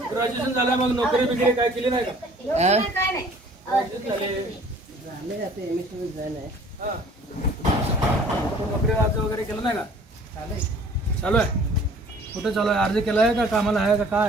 ग्रॅज्युएशन झालं मग नोकरी बिकरी काय केली नाही का हा. नोकरी अर्ज वगैरे केलं नाही का चालू आहे कुठं चालू आहे अर्ज केला आहे का कामाला आहे का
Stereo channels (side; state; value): both; normal; correlation 0.52